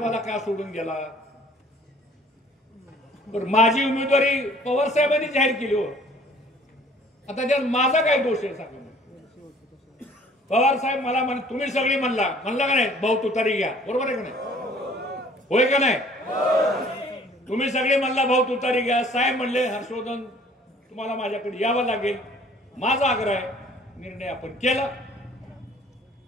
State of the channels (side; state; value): both; normal; correlation 0.54